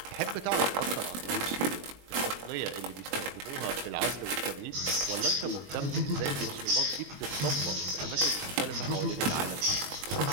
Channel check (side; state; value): left; late; 21 ms